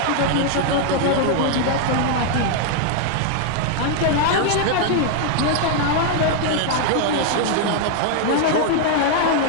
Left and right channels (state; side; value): different; both; correlation 0.00